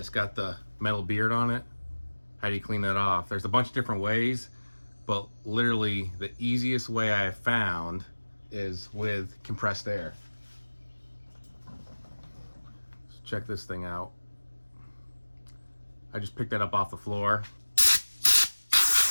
got the metal beard on it? How do you clean that off? There's a bunch of different ways, but literally the easiest way I have found is with compressed air. So check this thing out. I just picked that up off the floor.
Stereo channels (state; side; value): inverted; both; correlation -1.00